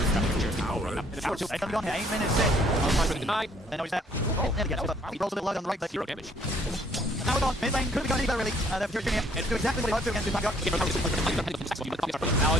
Zero damage. Now we're gone. Mid lane could be going either really. They're Fury Junior. Do exactly what he hoped to against Backup. Fury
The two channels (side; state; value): both; normal; correlation 0.63